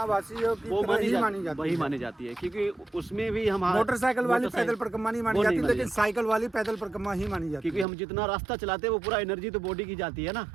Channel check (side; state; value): left; drops out; at 7.9 s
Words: वासियों की वो तरह ही मानी वही जाती है। मानी जाती है, क्योंकि उसमें भी हम मोटरसाइकिल वाली पैदल परिक्रमा नहीं मानी वो जाती, नहीं लेकिन मानी साइकिल वाली पैदल परिक्रमा ही मानी जाती क्योंकि हम जितना रास्ता चलाते हैं वो पूरा एनर्जी तो बॉडी की जाती है ना।